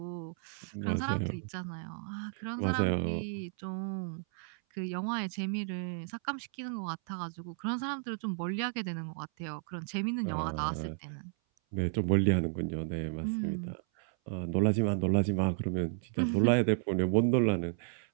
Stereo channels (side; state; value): left; silent; 56 dB below the other